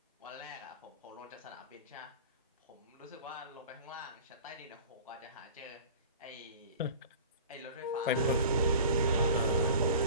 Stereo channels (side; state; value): both; inverted; correlation -0.40